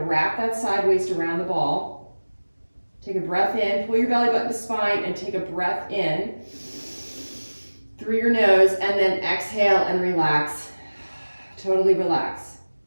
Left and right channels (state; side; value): inverted; both; correlation -1.00